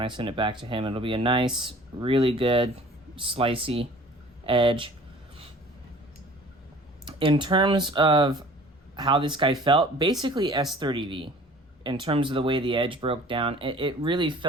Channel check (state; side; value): normal; both; correlation 0.48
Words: I send it back to him. It'll be a nice, really good, slicey edge. In terms of how this guy felt, basically S30V. In terms of the way the edge broke down, it really